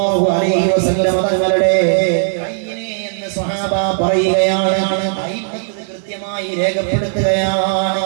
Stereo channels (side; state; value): left; silent; digital silence